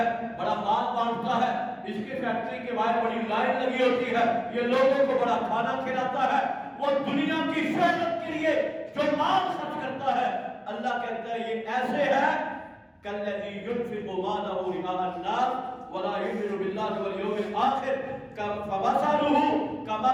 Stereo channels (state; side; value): identical; both; correlation 1.00